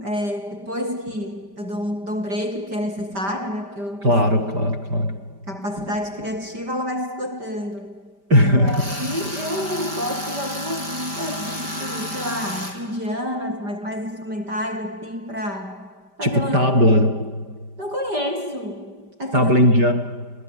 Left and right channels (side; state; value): left; late; 5.1 ms